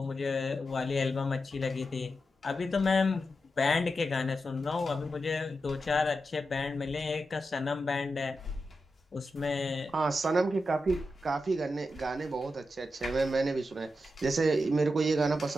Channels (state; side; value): normal; both; correlation 0.88